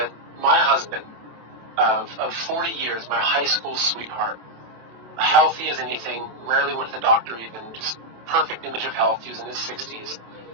my husband of 40 years, my high school sweetheart, healthy as anything, rarely went to the doctor even, just perfect image of health. He was in his 60s.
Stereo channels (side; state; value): left; late; 27 ms